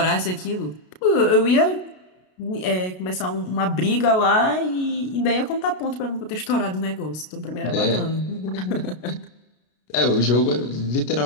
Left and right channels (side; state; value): right; late; 33 ms